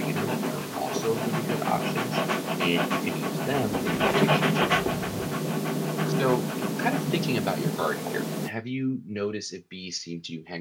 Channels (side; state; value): both; identical; correlation 1.00